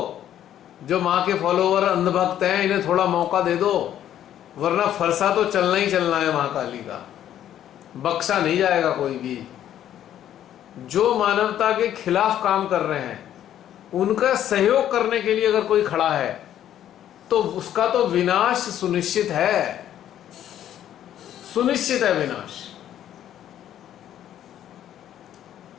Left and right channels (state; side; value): quieter; right; 11.1 dB